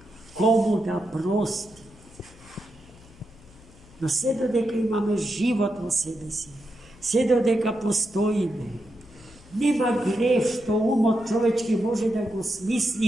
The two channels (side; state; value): left; noise; hum, 24 dB below the sound